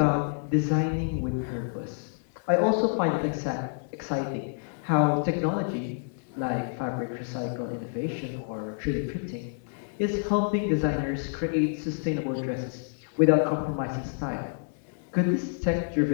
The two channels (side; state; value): right; silent; digital silence